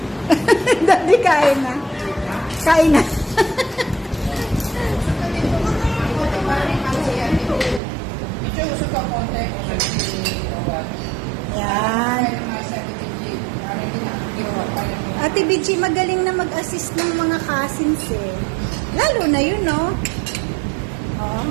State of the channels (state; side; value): drops out; left; at 7.8 s